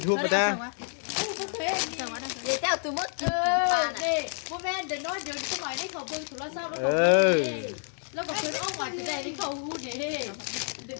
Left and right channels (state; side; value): silent; right; 58 dB below the other